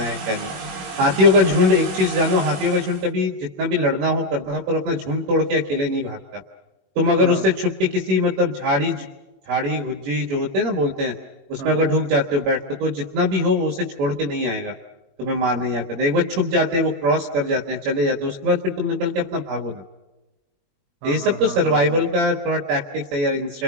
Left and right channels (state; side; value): late; left; 21 ms